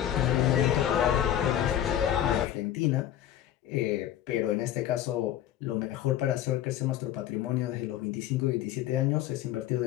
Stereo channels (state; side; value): quieter; right; 11.5 dB